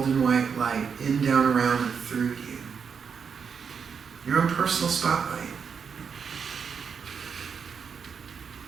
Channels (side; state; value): left; quieter; 6.4 dB